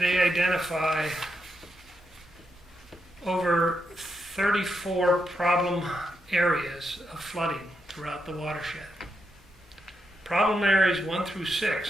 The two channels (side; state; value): both; normal; correlation 0.83